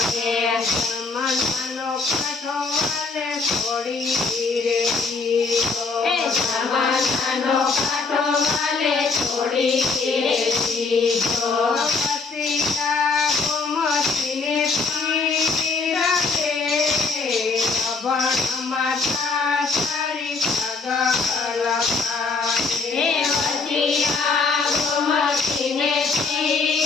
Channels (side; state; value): right; quieter; 4.2 dB